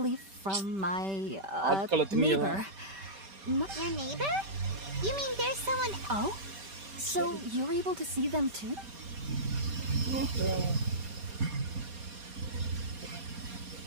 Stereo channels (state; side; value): late; left; 5.1 ms